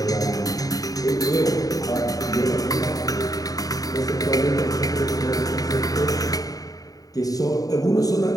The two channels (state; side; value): late; right; 0.18 ms